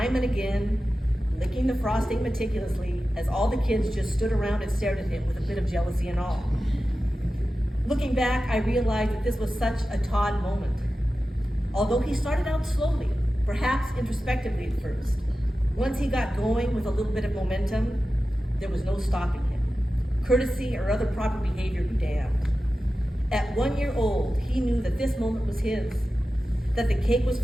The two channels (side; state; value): both; normal; correlation 0.94